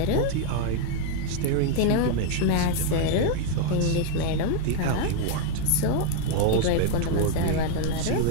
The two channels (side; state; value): both; different; correlation 0.01